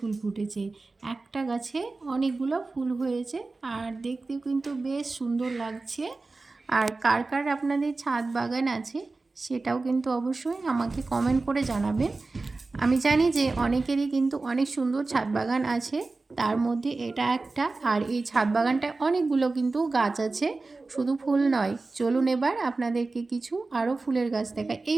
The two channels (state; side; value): quieter; left; 3.6 dB